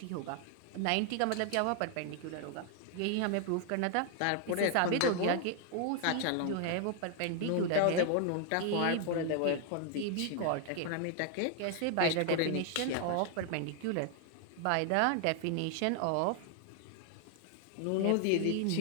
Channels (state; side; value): different; both; correlation 0.00